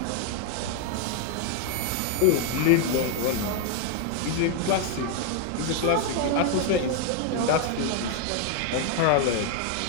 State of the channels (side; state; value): both; different; correlation 0.00